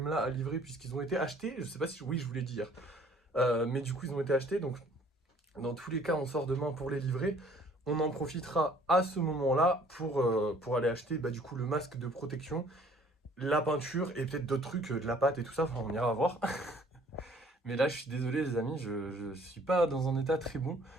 là à livrer puisqu'ils ont été achetés. Je sais pas si... Oui je vous l'ai dit hier. Mais du coup ils ont été achetés donc... Dans tous les cas, on sort demain pour les livrer. On en profitera à ce moment-là pour aller acheter du coup le masque de protection, la peinture et peut-être d'autres trucs, de la pâte et tout ça. Enfin, on ira voir. Mais là, je suis désolé les amis, je suis pas dans un état très bon.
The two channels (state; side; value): normal; both; correlation 0.57